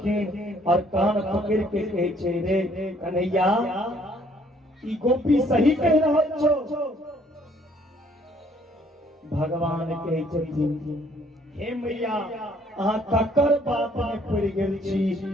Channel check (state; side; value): normal; both; correlation 0.62